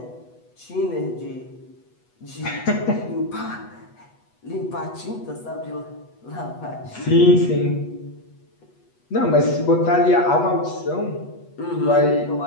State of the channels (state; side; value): late; right; 8.2 ms